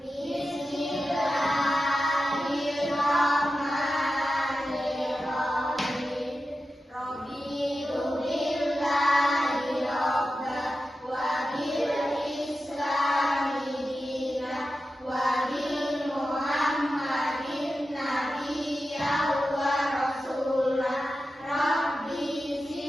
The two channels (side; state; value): both; normal; correlation 0.92